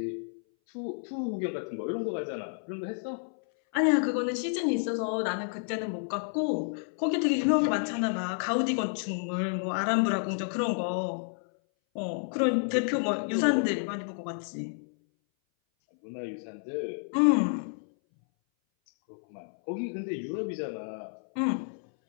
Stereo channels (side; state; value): right; silent; 58 dB below the other